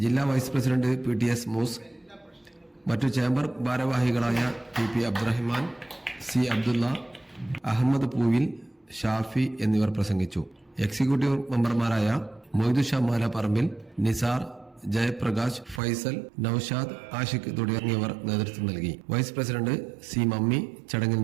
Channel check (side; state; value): left; drops out; at 15.8 s